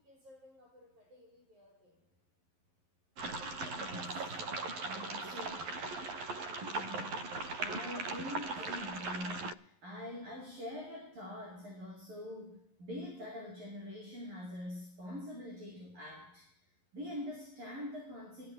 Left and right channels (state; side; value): late; left; 11 ms